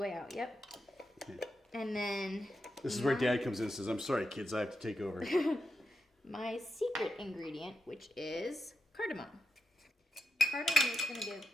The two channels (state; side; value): normal; both; correlation 0.86